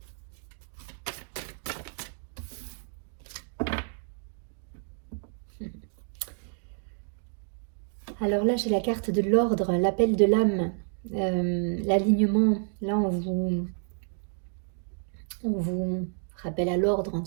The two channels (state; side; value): silent; left; 58 dB below the other